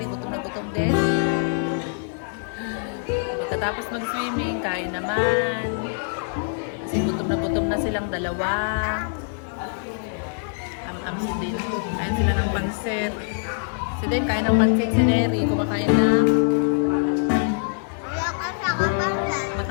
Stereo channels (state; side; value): silent; right; digital silence